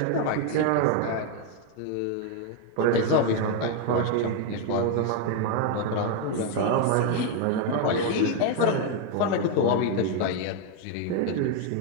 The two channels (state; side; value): different; both; correlation 0.01